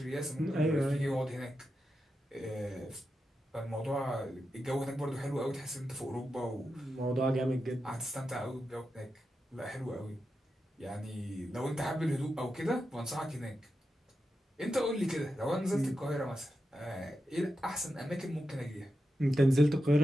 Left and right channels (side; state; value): both; normal; correlation 0.88